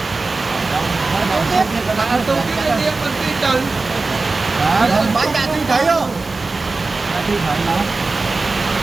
Bạn tôi cái đương mình tin từ. Bánh đạn tin thấy không? Tin thấy nó.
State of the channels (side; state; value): left; quieter; 3.7 dB